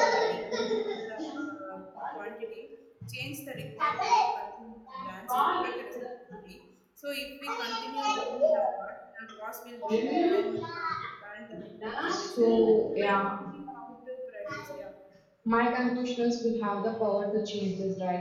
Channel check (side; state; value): both; identical; correlation 1.00